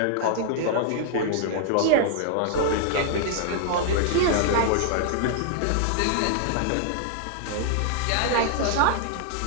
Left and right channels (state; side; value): different; both; correlation -0.01